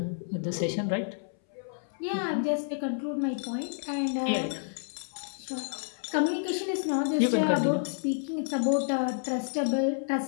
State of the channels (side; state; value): right; silent; 58 dB below the other